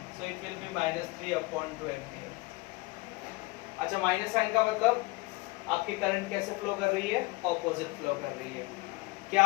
so it will be -3/2 ampere. अच्छा, माइनस साइन का मतलब आपकी करंट कैसे फ्लो कर रही है? ऑपोजिट फ्लो कर रही है। क्या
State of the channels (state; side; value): quieter; right; 22.9 dB